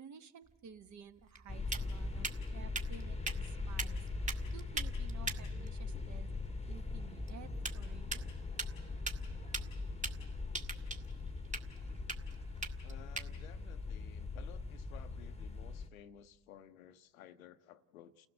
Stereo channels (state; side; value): normal; both; correlation 0.63